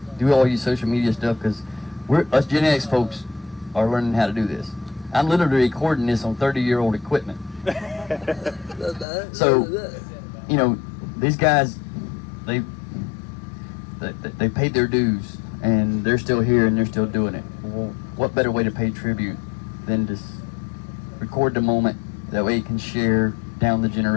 do all your social media stuff, because us Gen X folks are learning how to do this. I'm literally recording this on 30-year-old equipment. So, you know, these guys, they paid their dues, and they're still here and they're still doing it. Well, what better way to pay tribute than to record the moment? That way you can share down the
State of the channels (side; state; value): right; drops out; at 9.1 s